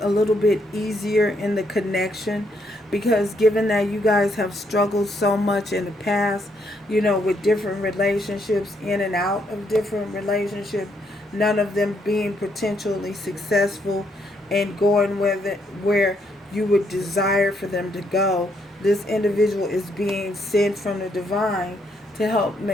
little bit easier in the connection, because given that you guys have struggled so much in the past, you know, with different relationships, in and out of different relationships, none of them being potentially successful and going where you would desire for them to go, this individual is being sent from the divine to help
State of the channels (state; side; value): normal; both; correlation 0.74